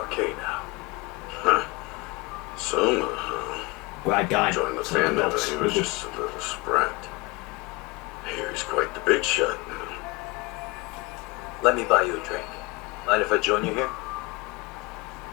now. Huh. Soma, huh? Great game. Joined the Sleeping family when Dogs. he was just a little sprat. Here he's quite the big shot now. Let me buy you a drink. Mind if I join you here?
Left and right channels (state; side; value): quieter; right; 24.7 dB